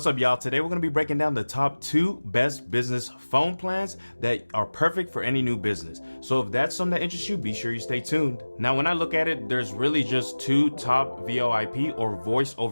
up, y'all? Today we're going to be breaking down the top 2 best business phone plans that are perfect for any new business. So if that's something that interests you, be sure you stay tuned. Now, when I look at it, there's really just 2 top VoIP or voice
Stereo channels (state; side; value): inverted; both; correlation -1.00